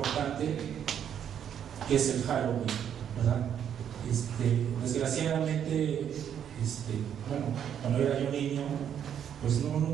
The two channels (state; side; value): quieter; left; 9.0 dB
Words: que es el Halloween, ¿verdad? Desgraciadamente, cuando era yo niño, pues